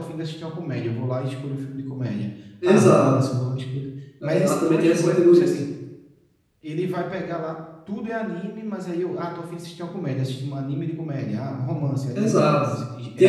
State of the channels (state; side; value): identical; both; correlation 1.00